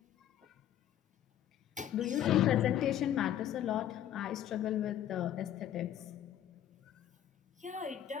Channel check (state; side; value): quieter; right; 11.1 dB